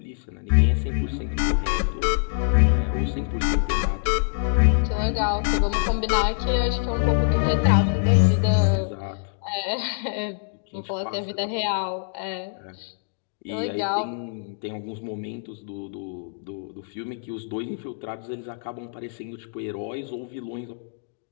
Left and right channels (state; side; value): silent; right; digital silence